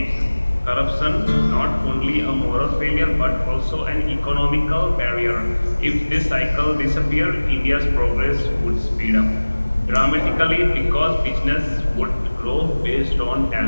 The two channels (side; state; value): both; inverted; correlation -1.00